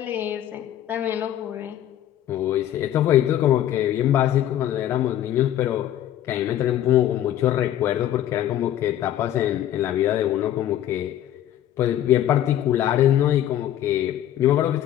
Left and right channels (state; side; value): quieter; right; 11.9 dB